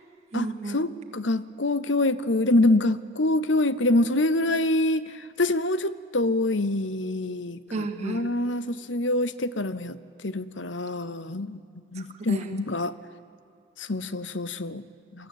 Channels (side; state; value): both; normal; correlation 0.37